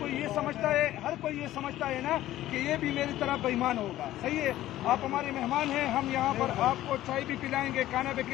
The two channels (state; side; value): quieter; right; 14.4 dB